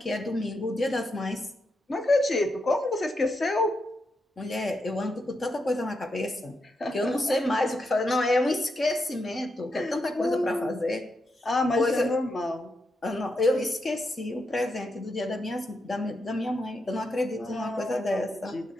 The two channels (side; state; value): both; normal; correlation 0.84